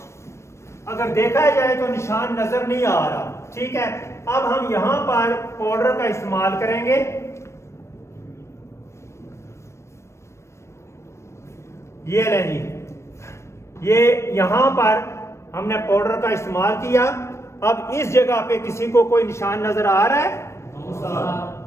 اگر دیکھا جائے تو نشان نظر نہیں آ رہا، ٹھیک ہے. اب ہم یہاں پر پاؤڈر کا استعمال کریں گے. یہ لیں جی، یہ یہاں پر ہم نے پاؤڈر کا استعمال کیا. اب اس جگہ پہ کسی کو کوئی نشان نظر آ رہا ہے؟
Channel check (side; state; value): right; late; 0.13 ms